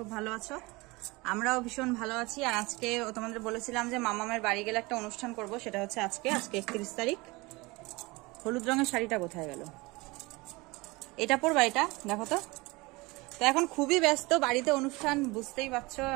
ভালো আছো। আমরাও ভীষণ ভালো আছি। আর আজকে তোমাদের বলেছিলাম যে মামামের বাড়ি গেলে একটা অনুষ্ঠান করব, সেটা হচ্ছে আজকে 31 তারিখ। হলুদ রঙের শাড়িটা কোথায় গেল? এটা পরবা, এটা দেখো তো। তো এখন খুবই ব্যস্ত, বাড়িতে অনুষ্ঠান, বুঝতেই পারছো,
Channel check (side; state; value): left; quieter; 23.7 dB